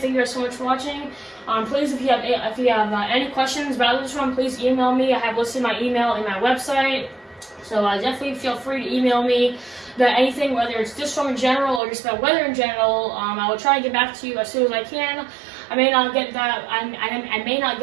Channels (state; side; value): drops out; left; at 11.8 s